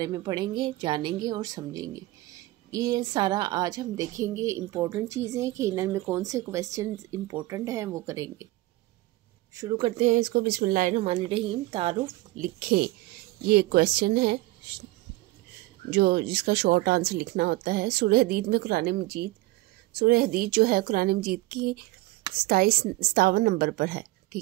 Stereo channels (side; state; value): left; quieter; 19.2 dB